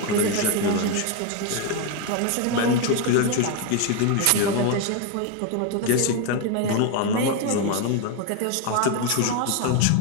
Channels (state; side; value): different; both; correlation 0.02